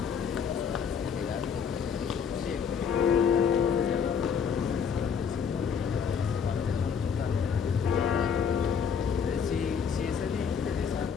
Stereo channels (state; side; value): quieter; right; 6.9 dB